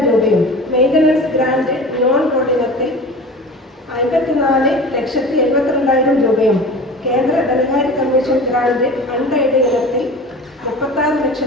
രൂപയും, മെയിൻ്റനൻസ് ഗ്രാന്റ് നോൺ കോർഡിനത്തിൽ 54,72,000 രൂപയും, കേന്ദ്ര ധനകാര്യ കമ്മീഷൻ ഗ്രാന്റ് അൺഎയ്ഡഡ് ഇനത്തിൽ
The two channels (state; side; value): normal; both; correlation 0.37